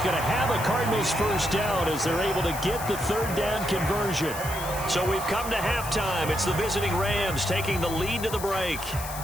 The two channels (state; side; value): noise; left; hiss, 10 dB below the sound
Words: going to have a Cardinals first down as they're able to get the 3rd down conversion. So we've come to halftime. It's the visiting Rams taking the lead to the break.